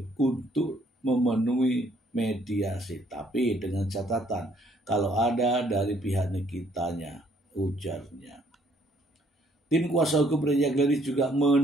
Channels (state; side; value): normal; both; correlation 0.65